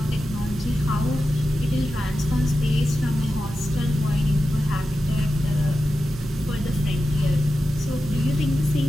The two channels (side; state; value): both; normal; correlation 0.91